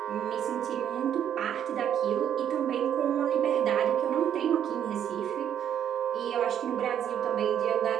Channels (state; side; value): quieter; left; 9.6 dB